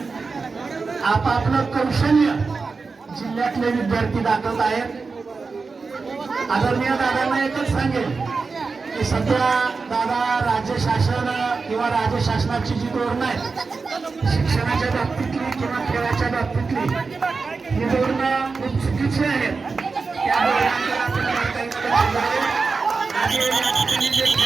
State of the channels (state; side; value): quieter; left; 4.4 dB